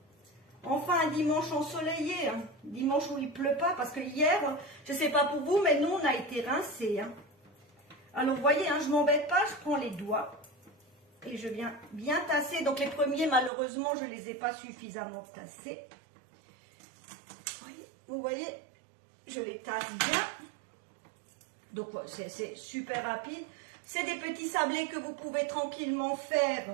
Enfin, un dimanche ensoleillé, hein. Dimanche où il pleut pas, parce que hier, je ne sais pas pour vous, mais nous, on a été rincés. Hein. Alors, vous voyez, hein, je ne m'embête pas, je prends les doigts et je viens bien tasser. Donc, les premiers, malheureusement, je ne les ai pas suffisamment tassés. Vous voyez, je les tasse bien. Donc, c'est super rapide. C'est des petits sablés que vous pouvez tranquillement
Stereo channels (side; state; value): left; drops out; at 13.5 s